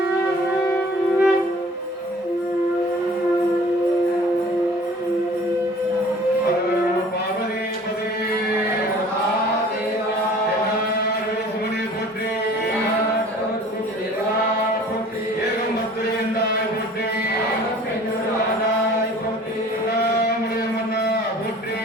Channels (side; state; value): both; normal; correlation 0.49